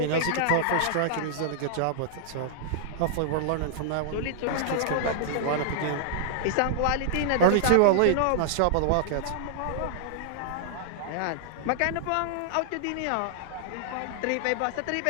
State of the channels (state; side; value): different; both; correlation -0.01